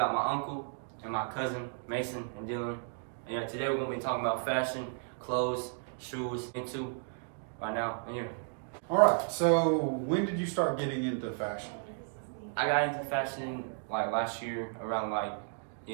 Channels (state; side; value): silent; left; 55 dB below the other